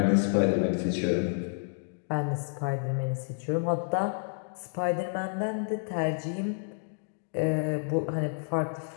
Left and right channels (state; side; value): silent; right; digital silence